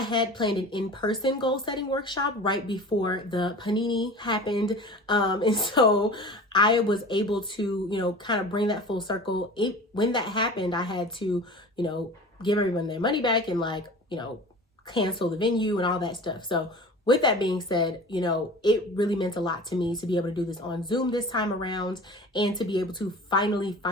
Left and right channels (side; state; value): both; normal; correlation 0.38